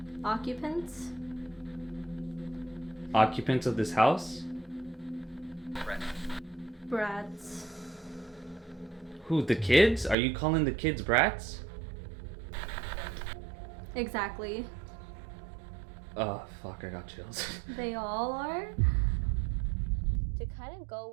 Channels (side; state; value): left; drops out; at 10.2 s